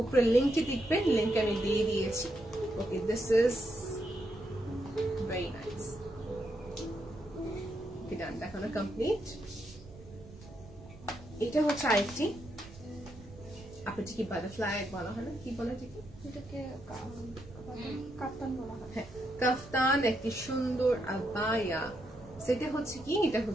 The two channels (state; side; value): noise; right; rumble, 19 dB below the sound